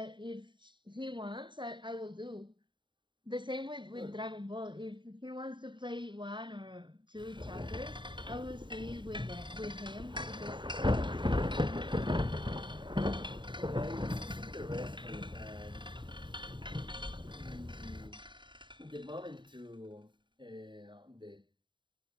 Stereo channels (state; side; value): late; left; 0.23 ms